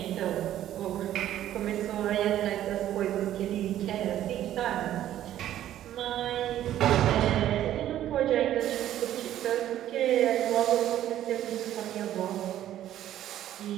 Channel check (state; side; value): quieter; left; 12.2 dB